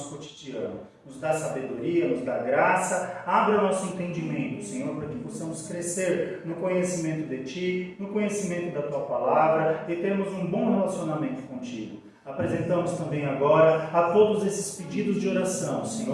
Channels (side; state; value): both; identical; correlation 1.00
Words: cotidiano. Nos dá sabedoria, nos dá graça, abra o nosso entendimento, Senhor, para que possamos crescer no conhecimento de Ti, no conhecimento da Tua palavra e termos um bom relacionamento contigo. Apresentamos também agora a todos esses pedidos de oração,